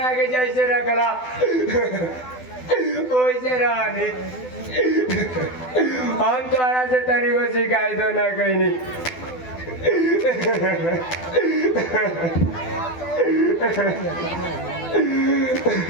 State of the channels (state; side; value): late; right; 12 ms